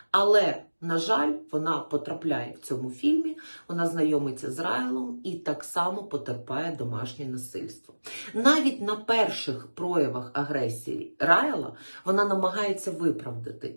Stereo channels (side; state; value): both; inverted; correlation -1.00